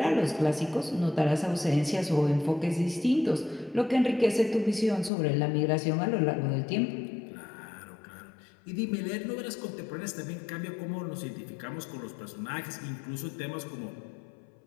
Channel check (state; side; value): drops out; right; at 5.1 s